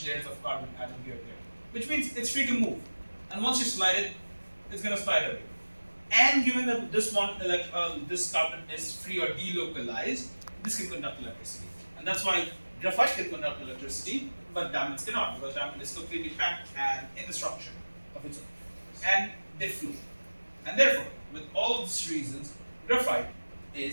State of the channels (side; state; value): both; inverted; correlation -1.00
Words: layers of carbon atom here there. Which means it's free to move. And once you slide it, it's gonna slide away. And given that this one, this carbon is free or delocalized, this can conduct electricity. And that's why graphite can conduct electricity, but diamonds cannot, because diamond is completely packed and in the structure of its own. And they flow. And therefore, with all of these reasons, graphite